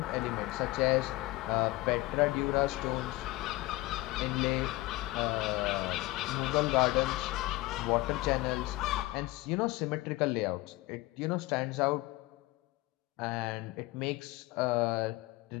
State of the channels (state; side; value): quieter; right; 19.9 dB